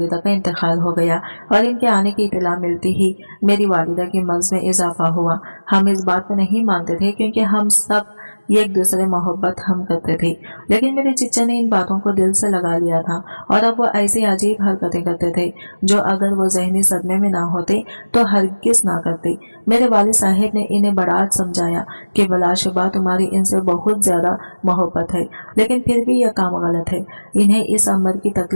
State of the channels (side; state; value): both; inverted; correlation -1.00